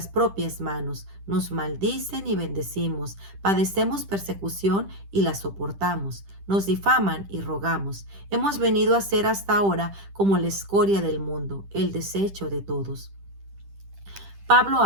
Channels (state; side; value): late; left; 10 ms